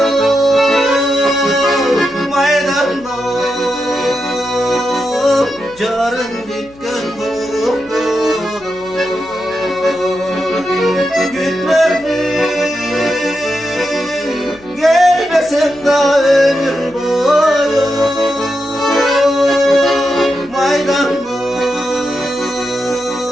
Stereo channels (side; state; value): left; noise; hum, 25 dB below the sound